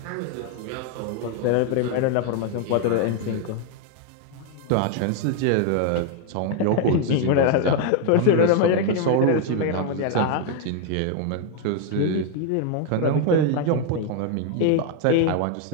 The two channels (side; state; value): both; different; correlation 0.01